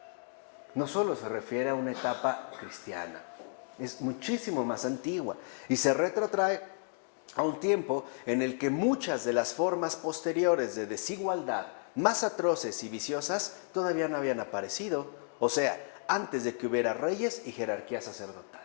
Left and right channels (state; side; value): silent; right; 56 dB below the other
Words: No solo se refiere a una etapa cristiana, es muchísimo más antigua y se retrotrae a un tiempo en el que muchas de las formas posteriores de desigualdad más atroces y viciosas todavía no habían aparecido, o sea, antes de que hubiera reyes y jerarquías